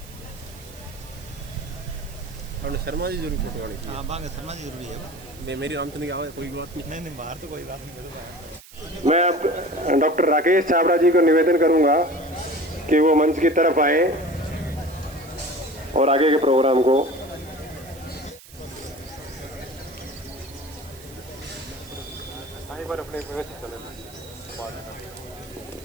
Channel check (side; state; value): right; noise; hiss, 20 dB below the sound